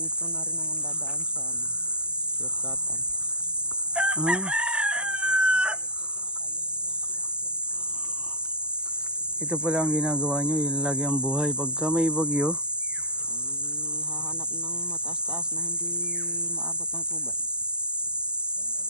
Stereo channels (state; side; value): late; left; 0.047 ms